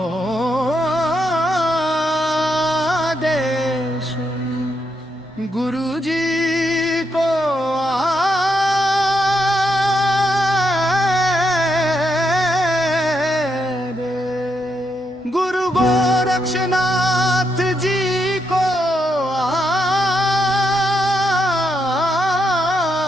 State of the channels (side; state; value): both; normal; correlation 0.80